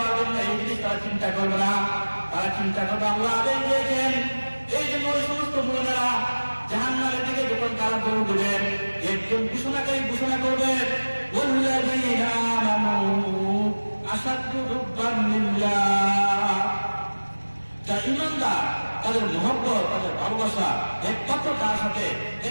জন্য, এই জিনিস তারা চিন্তা করবে না। তারা চিন্তা করবে আল্লাহ আদেশ দিয়েছেন। এই জন্য ওই সমস্ত মুমিনরা জাহান্নামের দিকে যখন তারা দৌড় দেবেন, একজন ঘোষণাকারী ঘোষণা করবেন ওয়াল্লাযীনা আমানু আশাদ্দু হুব্বান লিল্লাহ। যারা ঈমানদার তাদের মহব্বত, তাদের ভালোবাসা একমাত্র কার সাথে?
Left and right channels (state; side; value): inverted; both; correlation -1.00